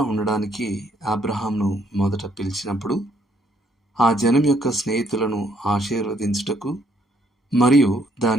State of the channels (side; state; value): both; normal; correlation 0.69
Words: ఉండడానికి అబ్రహాంను మొదట పిలిచినప్పుడు ఆ జనం యొక్క స్నేహితులను ఆశీర్వదించుటకు మరియు